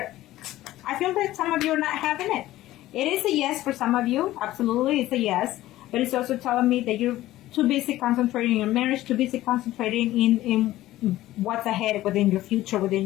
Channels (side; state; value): right; quieter; 15.5 dB